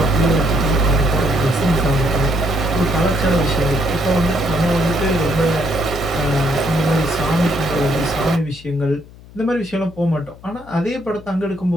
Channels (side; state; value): left; noise; hum, 21 dB below the sound